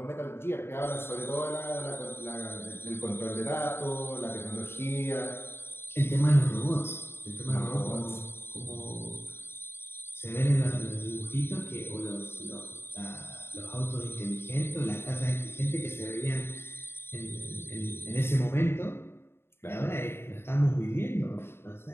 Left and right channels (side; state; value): right; late; 0.11 ms